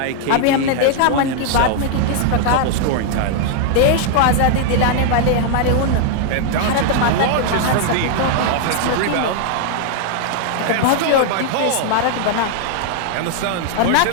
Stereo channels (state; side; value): different; both; correlation 0.00